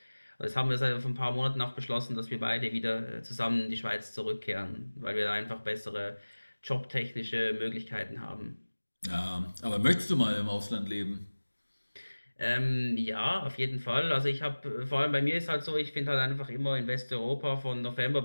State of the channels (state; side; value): inverted; both; correlation -1.00